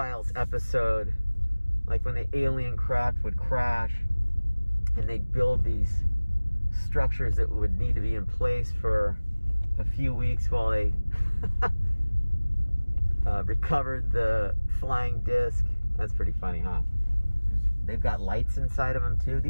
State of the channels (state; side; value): inverted; both; correlation -1.00